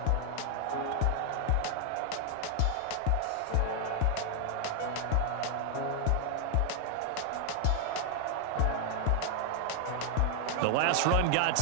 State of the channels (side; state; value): both; different; correlation 0.00